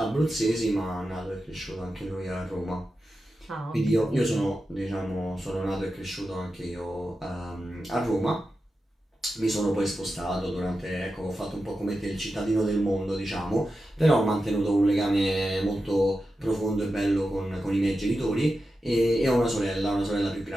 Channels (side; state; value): both; normal; correlation 0.91